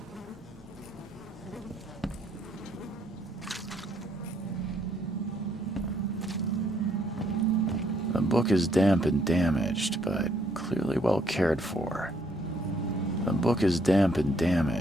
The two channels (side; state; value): both; normal; correlation 0.69